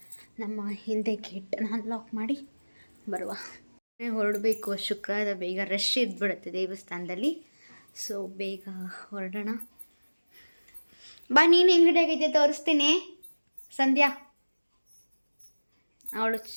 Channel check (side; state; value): both; inverted; correlation -1.00